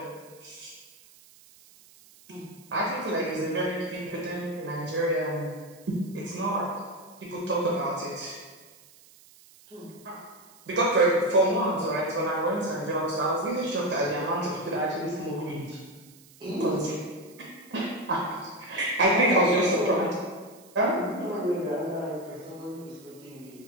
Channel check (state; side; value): noise; right; hiss, 25 dB below the sound